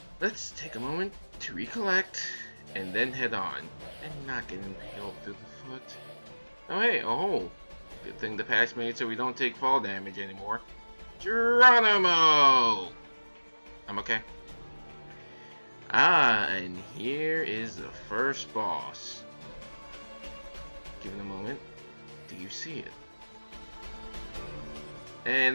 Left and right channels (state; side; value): inverted; both; correlation -1.00